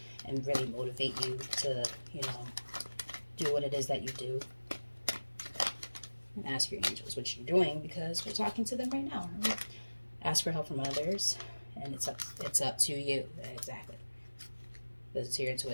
and really motivate you to, you know, do what it is that you do. And ask your angels what you're doing, because we're talking to them right now. Right? Ask for help from others, and it's up to you. Exactly. It's to your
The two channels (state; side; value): inverted; both; correlation -1.00